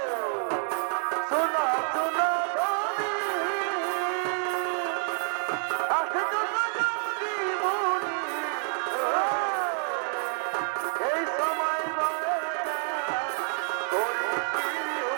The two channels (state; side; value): silent; left; 59 dB below the other